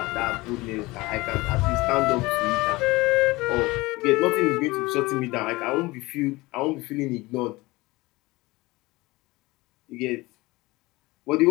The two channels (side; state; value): right; quieter; 21.3 dB